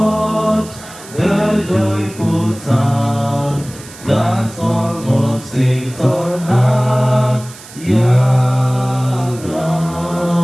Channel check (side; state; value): right; noise; hiss, 18 dB below the sound